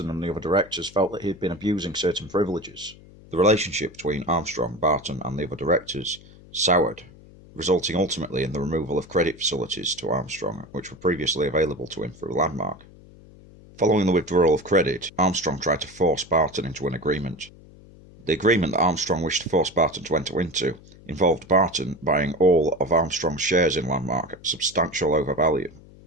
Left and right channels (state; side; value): noise; left; hum, 22 dB below the sound